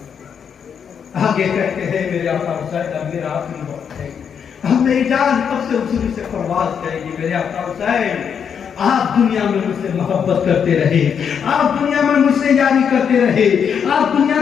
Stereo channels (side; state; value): right; quieter; 7.4 dB